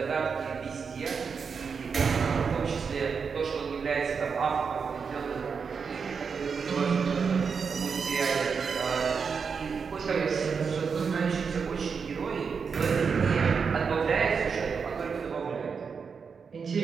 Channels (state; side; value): quieter; left; 5.8 dB